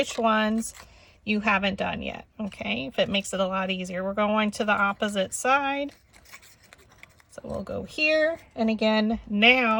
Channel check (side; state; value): both; identical; correlation 1.00